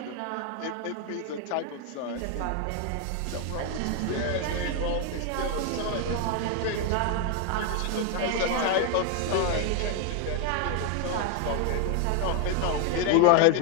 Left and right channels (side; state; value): both; different; correlation 0.01